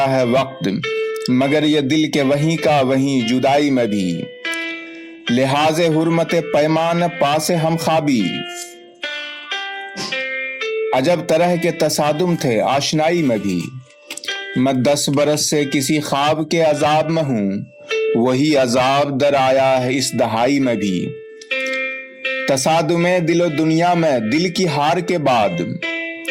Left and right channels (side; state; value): both; identical; correlation 1.00